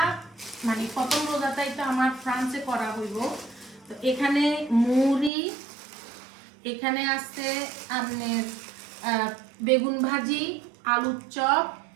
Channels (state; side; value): drops out; left; at 5.3 s